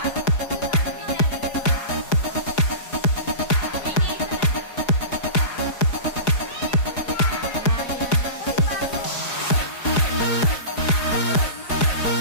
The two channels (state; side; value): late; right; 4.8 ms